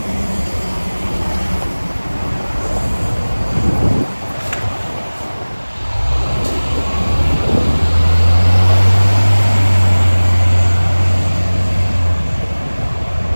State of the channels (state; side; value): inverted; both; correlation -1.00